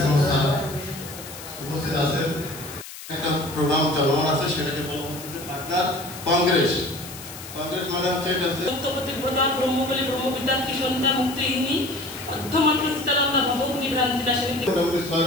স্যার উপস্থিত আছেন। একটা প্রোগ্রাম চলমান আছে, সেটাকে বলা হচ্ছে পার্টনার কংগ্রেস। কংগ্রেস মানে হচ্ছে এটা হচ্ছে সত্যপতি প্রধান ব্রহ্মবলী ব্রহ্মবিদ্যার্থী সন্ধ্যা মুক্তিহীনী অধ্যমাত্র চিত্তানন্দা ভবভূমি ভ্রান্তি নাশিনী। মোটামুটি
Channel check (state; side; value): noise; left; hiss, 13 dB below the sound